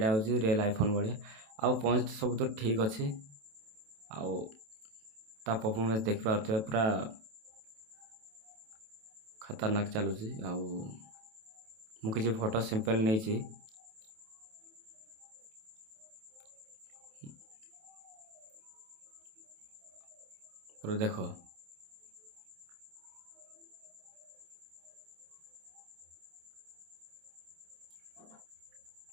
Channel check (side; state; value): left; late; 27 ms